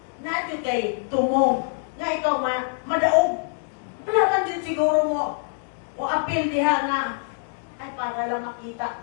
Natin kay tumong. Nga ikaw madaog. Wala man din siguro mo o apil diha nga ay para lang makita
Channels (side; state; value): right; silent; digital silence